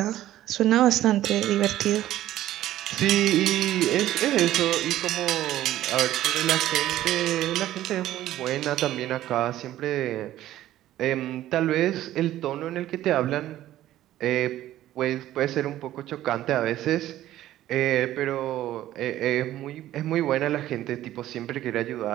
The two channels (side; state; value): left; quieter; 13.7 dB